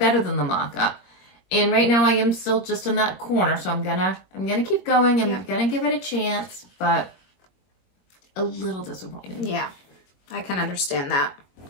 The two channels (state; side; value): late; right; 22 ms